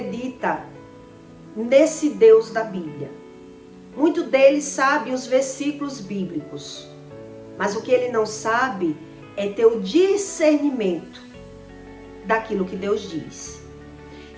nesse Deus da Bíblia. Muito deles sabe os versículos bíblicos, mas o que ele não sabe é ter o discernimento daquilo que Deus diz.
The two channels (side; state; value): both; identical; correlation 1.00